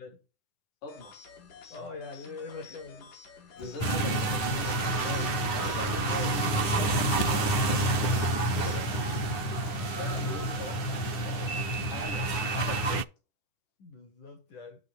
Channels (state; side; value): late; right; 10 ms